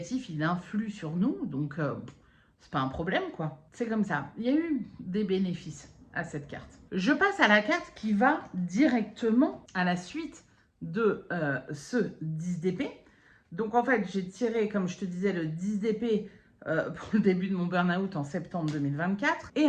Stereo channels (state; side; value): identical; both; correlation 1.00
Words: il influe sur nous, donc c'est pas un problème, quoi. C'est comme ça. Il y a eu des bénéfices à cette carte. Je passe à la carte qui va directement à la suite de ce 10 d'épée. Donc, en fait, j'ai tiré, comme je te disais, le 10 d'épée pour le début de mon burn-out en septembre 2024.